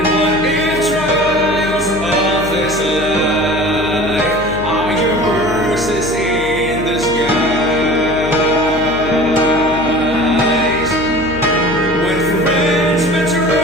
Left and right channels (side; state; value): left; noise; hum, 11 dB below the sound